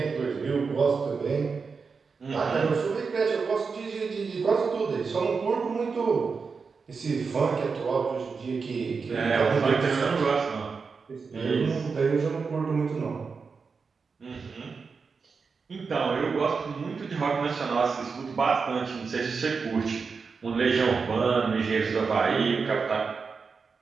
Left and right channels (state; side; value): quieter; left; 5.1 dB